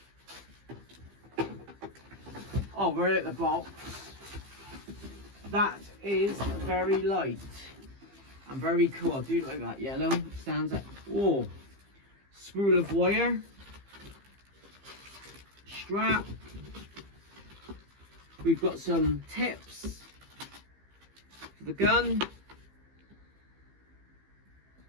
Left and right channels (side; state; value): left; late; 15 ms